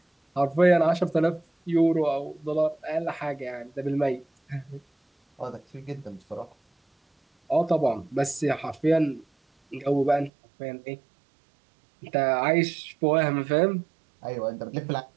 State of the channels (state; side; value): drops out; left; at 10.3 s